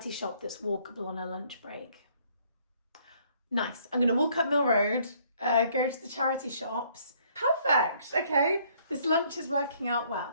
shop that's walkable on a lunch break. Nice. I'm going to walk up Mill Road, go to the charity shops. Perfect. Okay. This lunch is working out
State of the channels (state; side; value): inverted; both; correlation -0.63